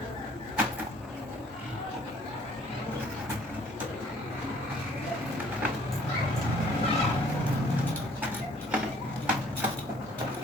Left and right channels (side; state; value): both; normal; correlation 0.58